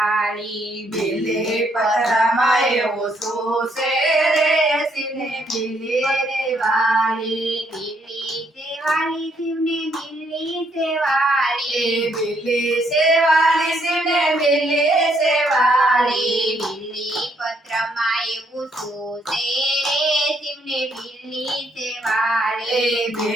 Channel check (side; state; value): both; normal; correlation 0.72